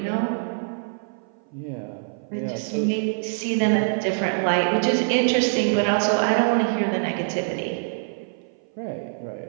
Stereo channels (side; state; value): left; silent; 57 dB below the other